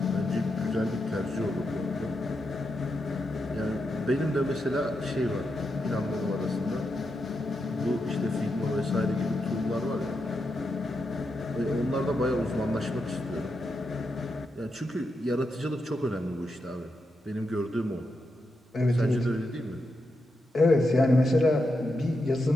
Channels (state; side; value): normal; both; correlation 0.85